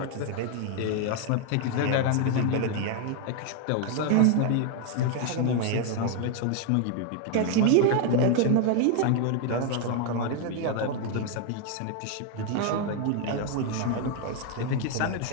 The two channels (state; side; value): different; both; correlation 0.00